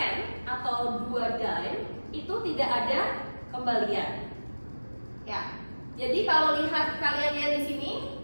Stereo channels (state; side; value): inverted; both; correlation -1.00